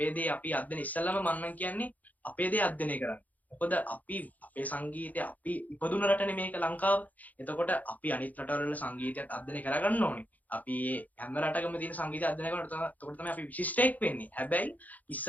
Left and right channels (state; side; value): late; right; 0.079 ms